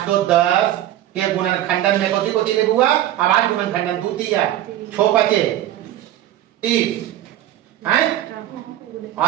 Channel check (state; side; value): quieter; left; 13.1 dB